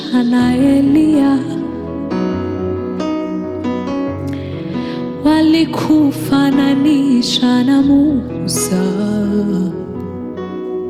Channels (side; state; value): both; identical; correlation 1.00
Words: na Eliya, walikufananisha na Musa,